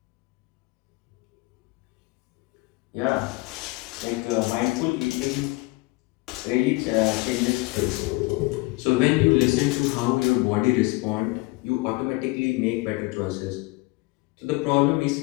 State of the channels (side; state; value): right; quieter; 23.6 dB